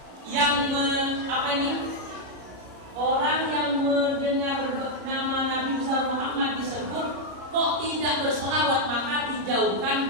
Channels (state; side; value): late; left; 33 ms